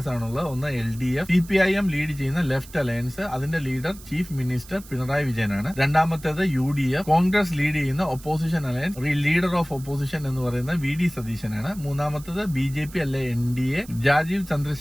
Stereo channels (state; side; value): noise; right; hiss, 20 dB below the sound